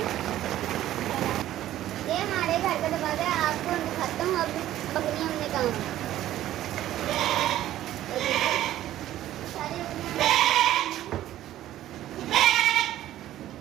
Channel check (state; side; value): quieter; left; 13.4 dB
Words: ये हमारे घर का दरवाजा है, आपको दिखाता हूँ। अब बकरियां हमने कहाँ सारी